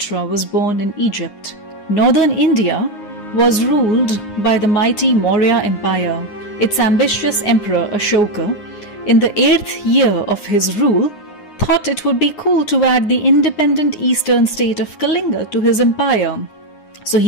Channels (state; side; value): late; right; 9.7 ms